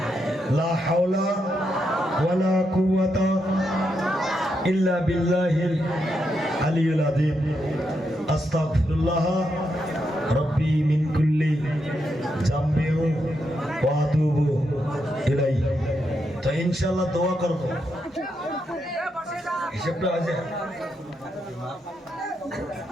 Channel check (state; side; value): normal; both; correlation 0.82